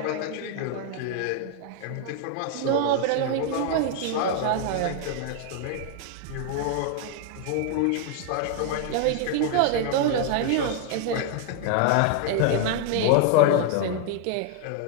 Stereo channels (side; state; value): both; different; correlation 0.00